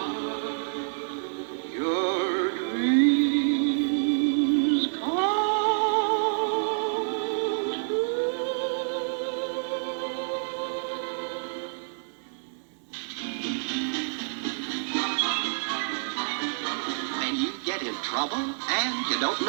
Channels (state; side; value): silent; left; digital silence